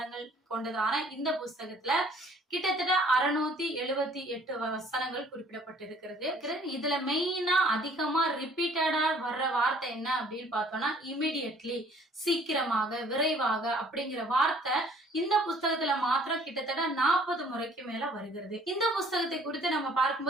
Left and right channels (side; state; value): both; normal; correlation 0.57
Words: கொண்டதான இந்த புஸ்தகத்துல கிட்டத்தட்ட 678 வசனங்கள் குறிப்பிடப்பட்டிருக்கிறது. இதுல மெயினா அதிகமா ரிப்பீட்டடா வர்ற வார்த்தை என்ன அப்படின்னு பார்த்தோம்னா இமிடியட்லி, சீக்கிரமாக, விரைவாக அப்படிங்கிற வார்த்தை இந்த புஸ்தகத்துல மாத்திரம் கிட்டத்தட்ட 40 முறைக்கு மேல வருகிறது. இந்த புஸ்தகத்தை குறித்து நம்ம